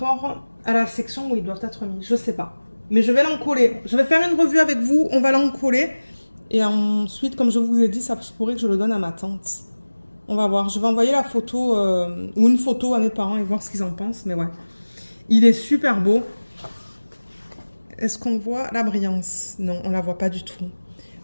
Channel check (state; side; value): inverted; both; correlation -1.00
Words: à la section où ils doivent être mis? Je sais pas. Mais je vais l'encoller. Je vais faire une revue avec vous. On va l'encoller. Et ensuite, comme je vous ai dit, ça pourrait que je le donne à ma tante. On va voir. Je vais envoyer la photo ou une photo à mes parents et voir ce qu'ils en pensent. Mais ouais, il est super beau. Est-ce qu'on voit la brillance? Non, on la voit pas du tout.